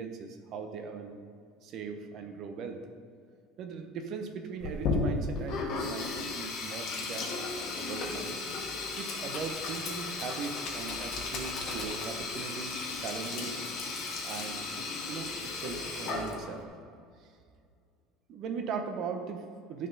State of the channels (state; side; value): normal; both; correlation 0.38